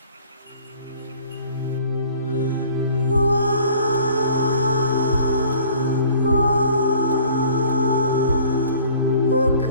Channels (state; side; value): inverted; both; correlation -0.52